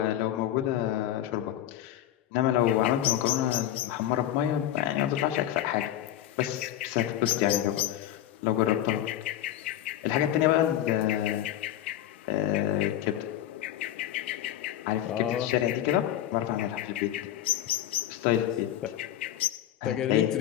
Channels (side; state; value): right; quieter; 12.3 dB